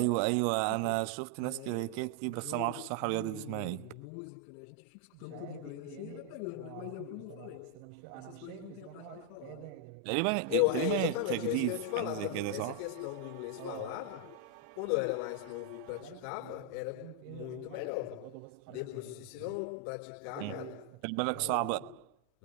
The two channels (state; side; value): different; both; correlation 0.00